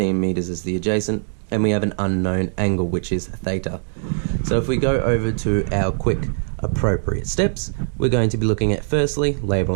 meters as the adjacent, and we have an unknown angle, which is theta. So if we go over to our quick appropriate steps, we're going to be looking at firstly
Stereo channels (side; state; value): left; silent; digital silence